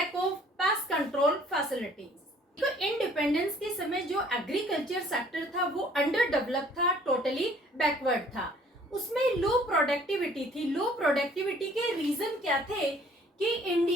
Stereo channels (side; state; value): both; normal; correlation 0.57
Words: of pest control facilities. तो इंडिपेंडेंस के समय जो एग्रीकल्चर सेक्टर था वो अंडर डेवलप था, टोटली बैकवर्ड था। उसमें लो प्रोडक्टिविटी थी। लो प्रोडक्टिविटी के रीजन क्या थे कि